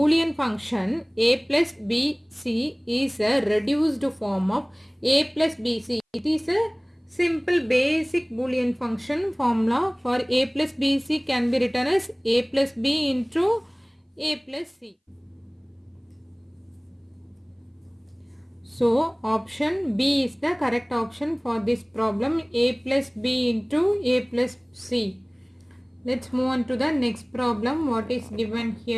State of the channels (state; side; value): identical; both; correlation 1.00